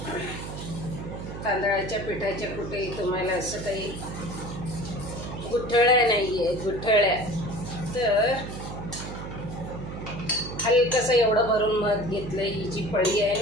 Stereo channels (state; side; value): noise; right; hum, 9 dB below the sound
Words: तांदळाच्या पिठाच्या कुठेही तुम्हाला असं काही गुठळ्या नाही आहे, गुठळ्या. तर हलकंसं एवढं भरून मध घेतलं. ही जी पळी आहे